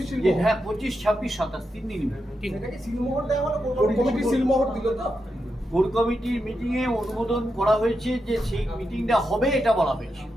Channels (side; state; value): both; normal; correlation 0.86